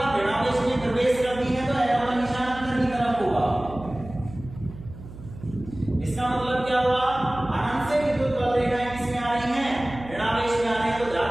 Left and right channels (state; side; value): noise; right; hum, 15 dB below the sound